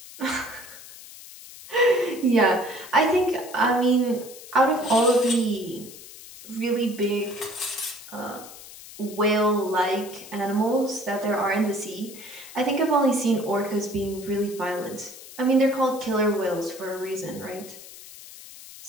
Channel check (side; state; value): left; noise; hiss, 16 dB below the sound